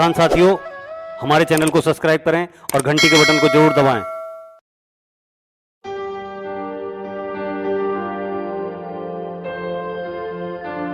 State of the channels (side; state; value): both; identical; correlation 1.00